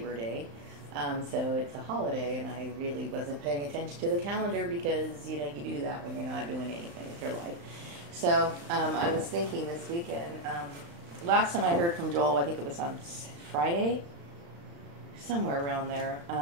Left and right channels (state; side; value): late; left; 35 ms